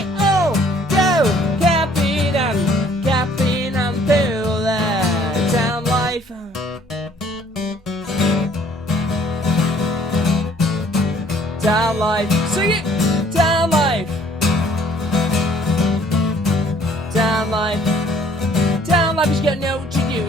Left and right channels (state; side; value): normal; both; correlation 0.59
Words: all go capping and through their town life. Town life, sing it! Town life! Town life! Town life has got no to do